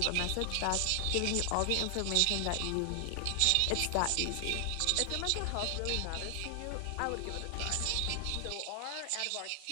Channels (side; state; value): both; different; correlation 0.00